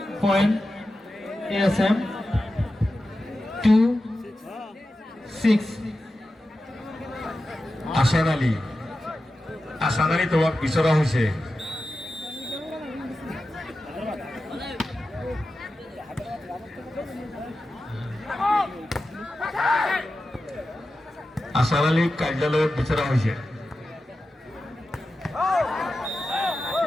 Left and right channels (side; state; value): both; normal; correlation 0.92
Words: Point ASM 2-6. আশার আলী তোমাক বিচৰা হৈছে আশার আলী কাৰ্যালয়ত বিচৰা হৈছে